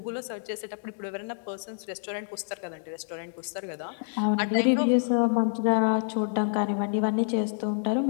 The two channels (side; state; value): right; silent; digital silence